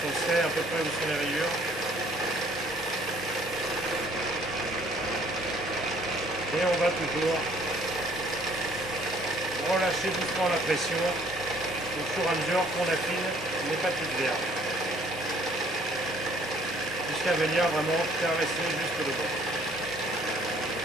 on sait à peu près où sont les rayures. Et on va toujours relâcher doucement la pression au fur et à mesure qu'on affine les papiers de verre. Jusqu'à venir vraiment caresser jusque le bord.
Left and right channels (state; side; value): normal; both; correlation 0.60